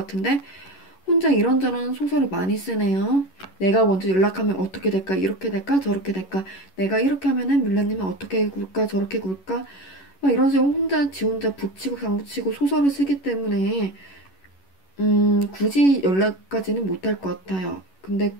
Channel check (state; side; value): late; right; 11 ms